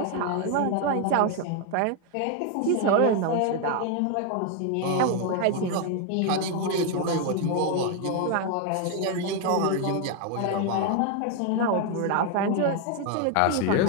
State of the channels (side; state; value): both; different; correlation 0.01